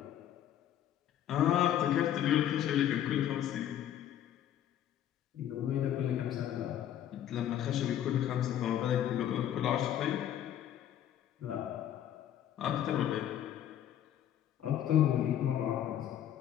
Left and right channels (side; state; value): right; quieter; 10.9 dB